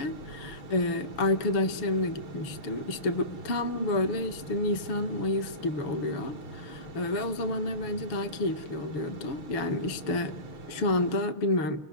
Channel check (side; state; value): right; late; 6.4 ms